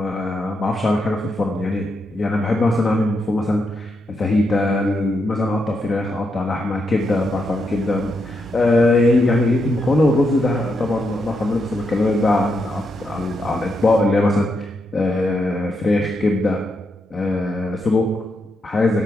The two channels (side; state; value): both; normal; correlation 0.82